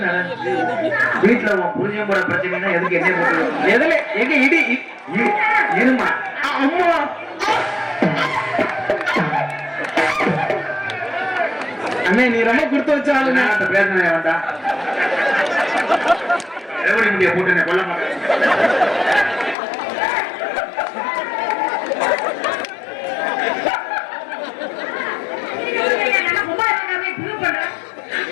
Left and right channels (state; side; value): drops out; right; at 19.6 s